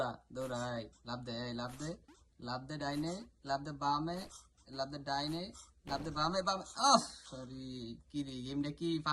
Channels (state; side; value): identical; both; correlation 1.00